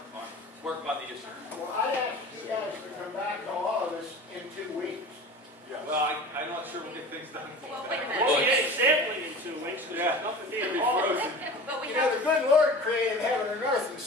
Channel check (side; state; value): both; normal; correlation 0.37